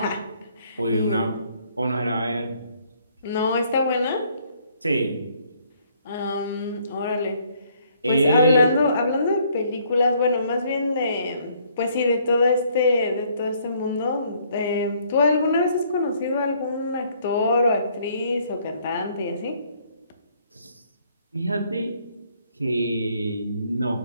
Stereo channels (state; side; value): inverted; both; correlation -0.65